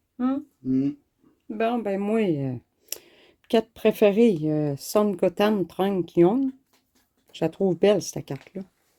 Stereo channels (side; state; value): both; identical; correlation 1.00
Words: Bon, ben moi, carte préférée, Son Goten Trunks Young. Je la trouve belle, cette carte-là.